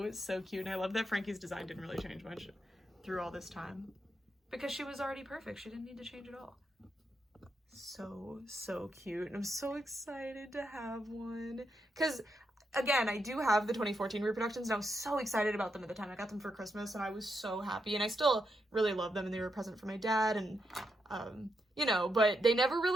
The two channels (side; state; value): both; normal; correlation 0.82